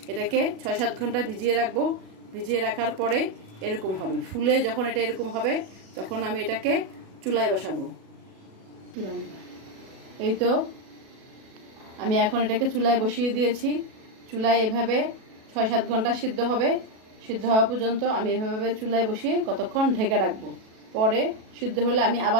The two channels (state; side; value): late; left; 37 ms